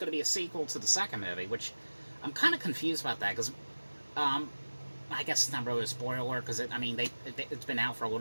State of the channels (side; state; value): both; inverted; correlation -1.00